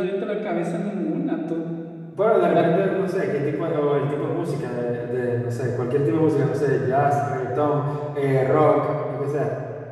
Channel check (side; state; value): both; identical; correlation 1.00